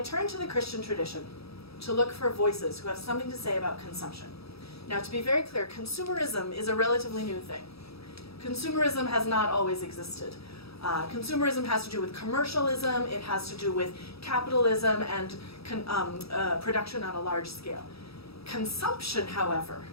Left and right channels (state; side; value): late; right; 0.77 ms